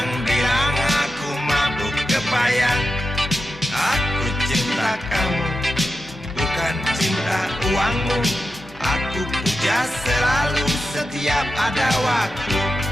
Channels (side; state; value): both; normal; correlation 0.89